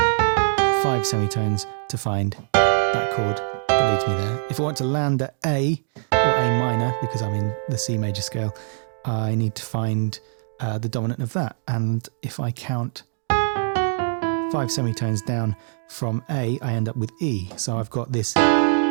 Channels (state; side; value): silent; left; 63 dB below the other